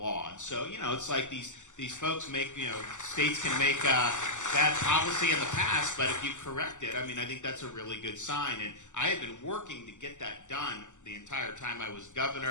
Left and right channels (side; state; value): right; late; 0.85 ms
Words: And so, it's like these folks make, states can make bad policy in the past, but if you correct it, I think that's a really good sign. And I have been working to get that done the entire time I was